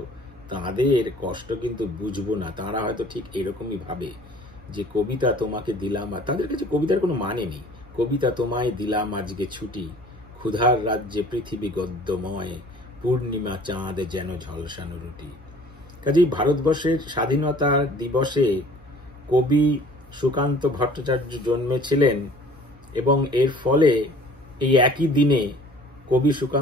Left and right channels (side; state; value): right; noise; hum, 25 dB below the sound